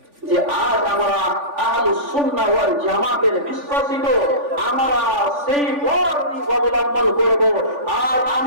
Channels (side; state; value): left; late; 3.5 ms